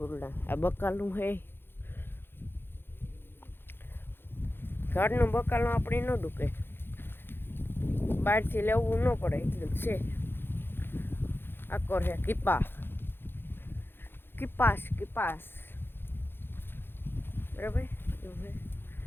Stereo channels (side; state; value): right; late; 0.10 ms